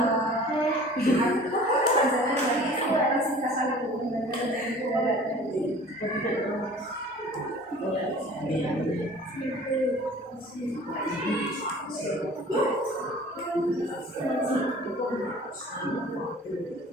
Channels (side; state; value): both; normal; correlation 0.46